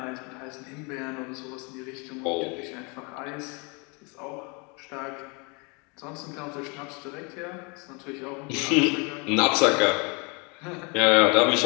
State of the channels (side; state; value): right; quieter; 31.4 dB